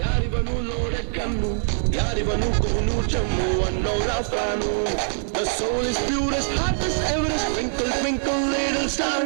ಯಾರಿವನು ನೋಡೆ ಕಣ್ಣು, ಯಾರಿವನು ಕೋನು ಚಮ್ಮು ಅನ್ನೋರ fan. The soul is purest, heart is Everest, twinkle twinkle little star,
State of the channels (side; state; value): left; silent; 63 dB below the other